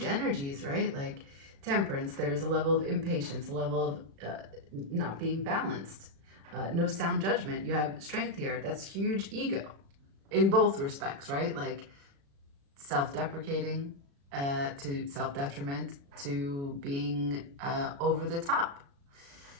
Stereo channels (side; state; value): left; late; 36 ms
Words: right? Like temperance, there's a level of impatience, a level of not being balanced, no sound judgment. You have strength here. That's huge ego in both respects, right? Like self-deprecating to self-detriment to being over the top